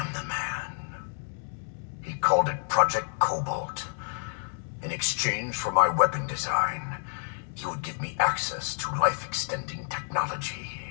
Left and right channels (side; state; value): right; silent; digital silence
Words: the man. He called it Project Cobalt. In exchange for my weapon design, he would give me access to life-extending technology.